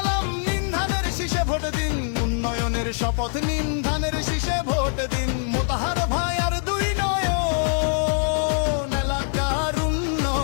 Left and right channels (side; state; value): right; silent; 57 dB below the other